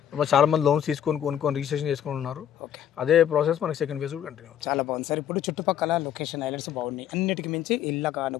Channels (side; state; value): right; quieter; 10.1 dB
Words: చాలా మంది లోన్స్ కొనుక్కొని రిజిస్ట్రేషన్ చేసుకొని ఉన్నారు. అదే ప్రాసెస్ మనకి సెకండ్ ఫేజ్ కూడా కంటిన్యూ. చాలా బాగుంది సార్. ఇప్పుడు చుట్టుపక్కల లొకేషన్ హైలైట్స్ బాగున్నాయి. అన్నిటికి మించి ఇళ్ళ